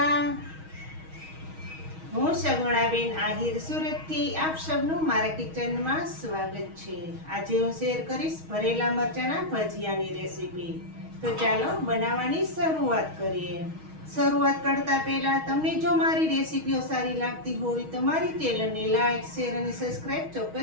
હું સગુણાબેન આહિર સુરતથી આપ સૌનું મારા કિચનમાં સ્વાગત છે. આજે હું શેર કરીશ ભરેલા મરચાંના ભજીયાની રેસીપી. તો ચાલો બનાવવાની શરૂઆત કરીએ. શરૂઆત કરતા પહેલા તમને જો મારી રેસીપીઓ સારી લાગતી હોય તો મારી ચેનલને લાઈક, શેર અને સબસ્ક્રાઈબ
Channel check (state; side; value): late; left; 6.3 ms